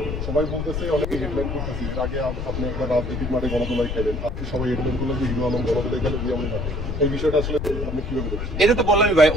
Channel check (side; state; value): left; noise; rumble, 4 dB below the sound